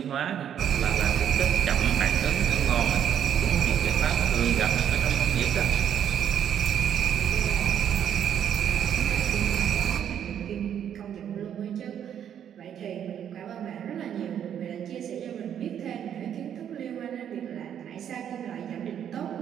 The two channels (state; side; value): quieter; left; 9.3 dB